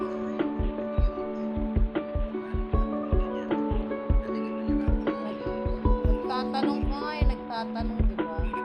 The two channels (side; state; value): both; identical; correlation 1.00